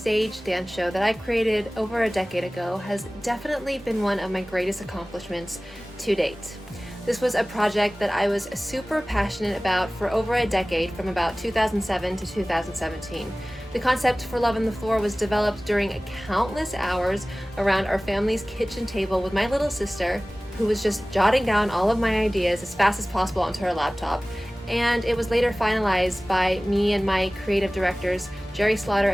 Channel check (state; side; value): normal; both; correlation 0.98